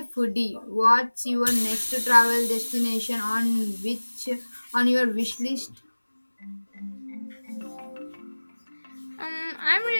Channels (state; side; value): inverted; both; correlation -1.00